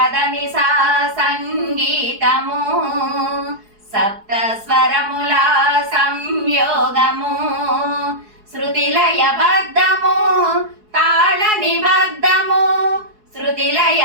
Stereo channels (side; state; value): left; late; 4.7 ms